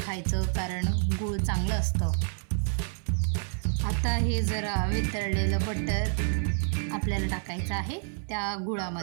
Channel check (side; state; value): left; silent; 59 dB below the other